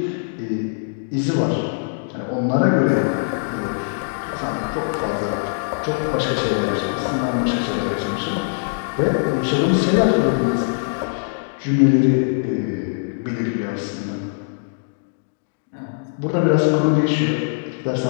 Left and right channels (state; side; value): silent; right; digital silence